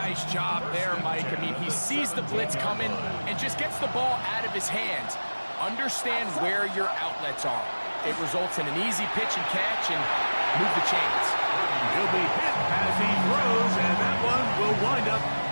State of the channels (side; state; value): both; inverted; correlation -1.00